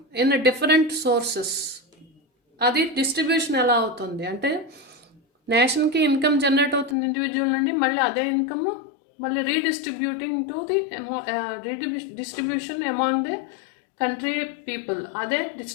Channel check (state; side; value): drops out; right; at 7.0 s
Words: in different sources, అది డిస్ట్రిబ్యూషన్ ఎలా అవుతుంది అంటే నేషన్కి ఇన్కమ్ జనరేట్ అవుతుంది ఇండివిజువల్ నుండి, మళ్ళీ అదే ఇన్కమ్ మళ్ళీ redistributing to the distribution among the country people, అదే